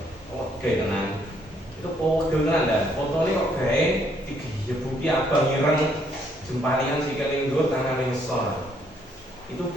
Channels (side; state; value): both; normal; correlation 0.69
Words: Oke, tenang. Itu pegel tenan dah. Fotonya kok gawe digebuki abang ireng jempalian sikile ndur tangan ngisor. Itu